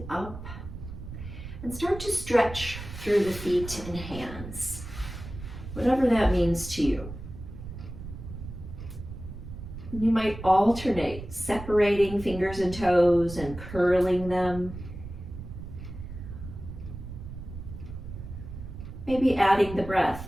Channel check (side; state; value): right; noise; rumble, 11 dB below the sound